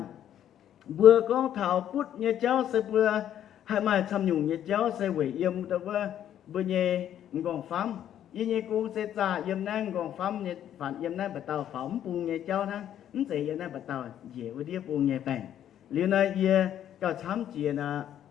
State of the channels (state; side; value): quieter; right; 10.6 dB